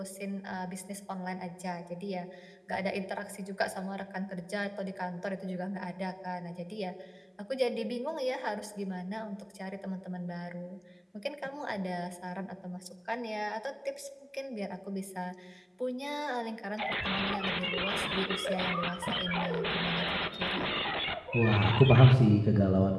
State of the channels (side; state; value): both; identical; correlation 1.00